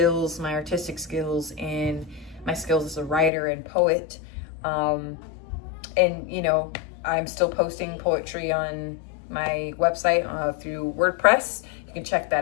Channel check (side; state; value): right; drops out; at 3.3 s